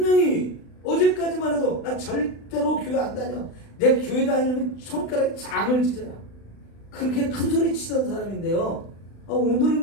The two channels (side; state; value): right; late; 35 ms